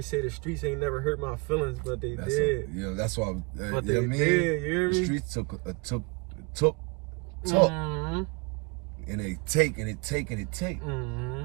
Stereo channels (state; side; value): quieter; left; 29.7 dB